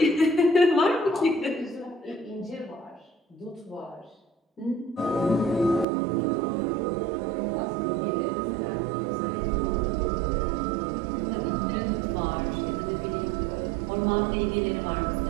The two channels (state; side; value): drops out; left; at 5.9 s